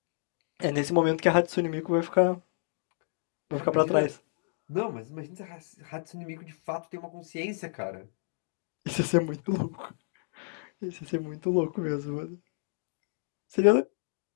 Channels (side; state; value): right; silent; digital silence